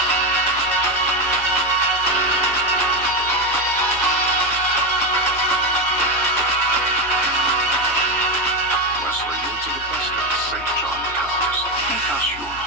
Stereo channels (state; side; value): noise; left; rumble, 29 dB below the sound